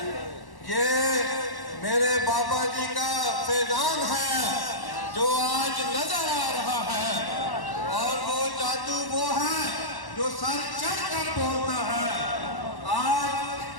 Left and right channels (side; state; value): right; late; 1.1 ms